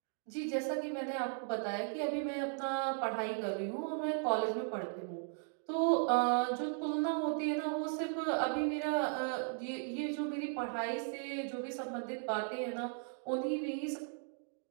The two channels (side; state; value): left; silent; 53 dB below the other